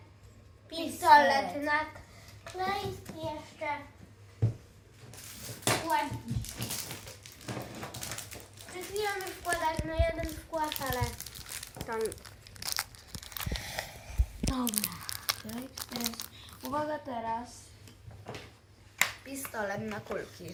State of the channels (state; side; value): identical; both; correlation 1.00